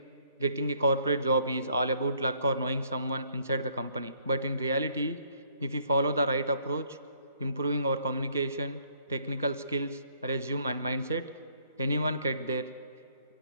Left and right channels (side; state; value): both; inverted; correlation -0.66